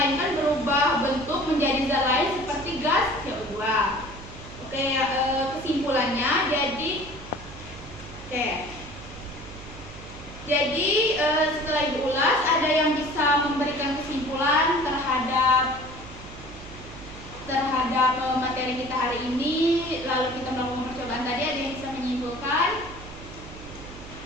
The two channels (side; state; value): right; noise; hum, 15 dB below the sound